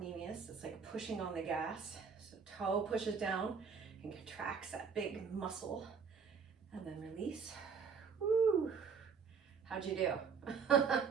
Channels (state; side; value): quieter; left; 6.0 dB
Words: It's like pushing on the gas. So toe pushes down and contracts that big muscle. And then release. Woo. How'd you do?